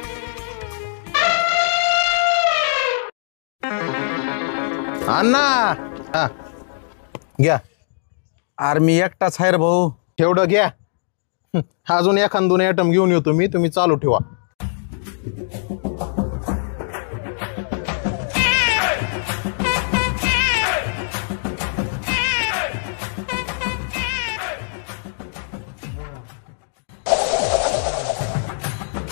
अण्णा हा घ्या. अरे मी एकटाच आहे रे भाऊ. तेवढं घ्या. अजून एखाद 2 आयटम घेऊन येतो मी, तुम्ही चालू ठेवा.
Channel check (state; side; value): silent; right; digital silence